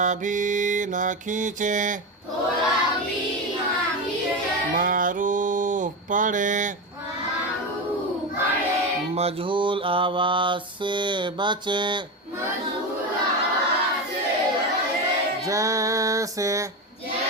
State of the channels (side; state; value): both; normal; correlation 0.18